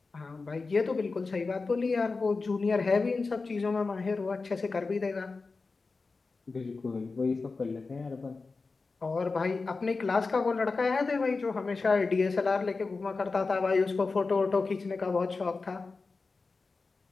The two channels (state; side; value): quieter; right; 4.1 dB